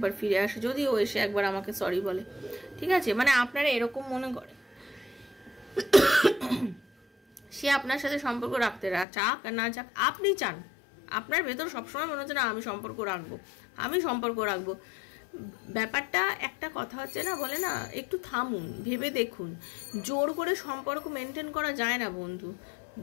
ফিরে আসে, যদিও এসে একবার আমাকে সরি বলে, ঠিক আছে। মানে আপনারা এরকম মনে করে সে আপনার সাথে সম্পর্ক রাখতে চাক আর না চাক, আপনি চান, আপনার ভেতর সবসময় মনে হচ্ছে না আমি সম্পর্ক রাখবো। ব্যাপারটা একটা কথা হচ্ছে না, বলে না, একটু থামুন, ভেবে দেখুন। জোর করে সম্পর্ক মেনটেন করা যায় না বন্ধু,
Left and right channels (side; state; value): right; drops out; at 9.1 s